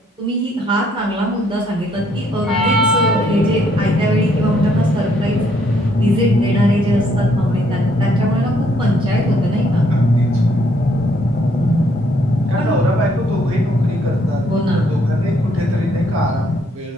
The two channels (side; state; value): both; normal; correlation 0.68